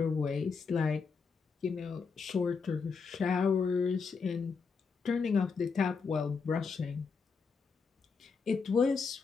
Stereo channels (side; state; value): right; quieter; 5.2 dB